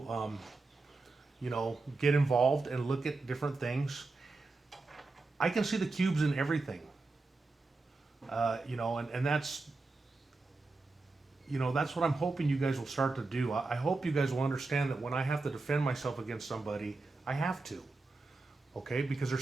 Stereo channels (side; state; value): left; quieter; 3.6 dB